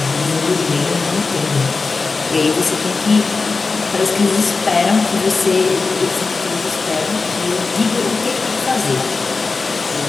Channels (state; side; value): quieter; right; 4.2 dB